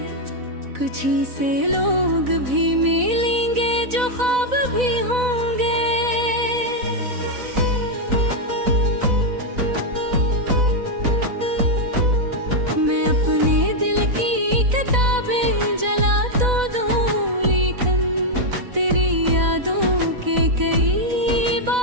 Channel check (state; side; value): late; left; 4.0 ms